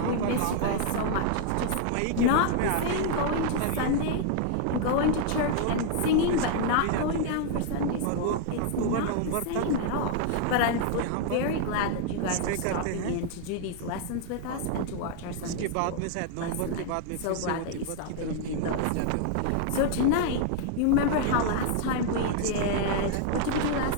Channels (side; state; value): both; different; correlation 0.00